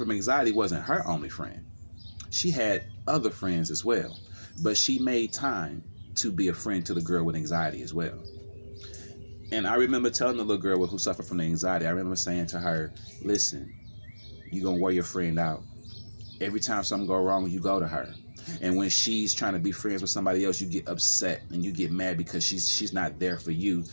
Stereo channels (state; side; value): inverted; both; correlation -1.00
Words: anxiety wasn't her only friend. She had other friends as well. But she made time to be a friend to the girl with anxiety as well. And I remember telling the little girl who suffered from the anxiety, I remember saying to her, listen, you're going to wear your friend out. Every time something go wrong, you go to her. And when she's trying to be friends with somebody else, you get upset and you get mad because she's not there for you.